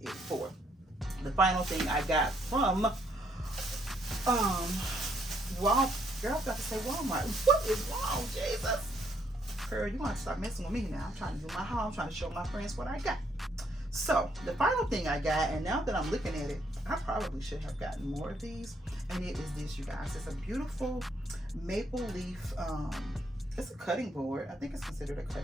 for. The final thing I got from girl, I got to say Walmart. What is wrong, Jesus? Girl, you want to stop messing with me now. I'm trying to do my haul. I'm trying to show my friends what I got. So the final thing I got, and now that I'm looking at it, I probably should have gotten more of these. And it is this, you guys. It's a beautiful maple leaf. It's a cutting board. I think it's considered a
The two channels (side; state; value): both; normal; correlation 0.71